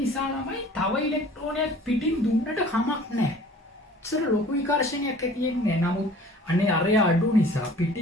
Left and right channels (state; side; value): normal; both; correlation 0.49